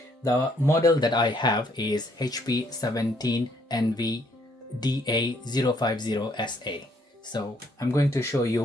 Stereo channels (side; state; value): both; normal; correlation 0.68